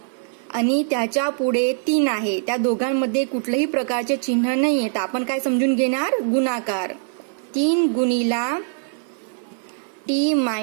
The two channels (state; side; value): silent; left; digital silence